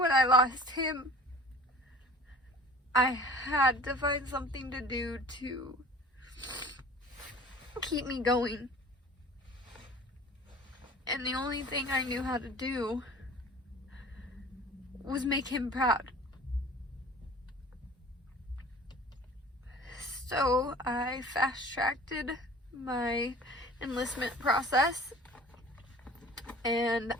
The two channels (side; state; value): both; normal; correlation 0.45